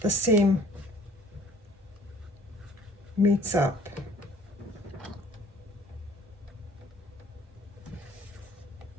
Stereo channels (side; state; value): both; normal; correlation 0.54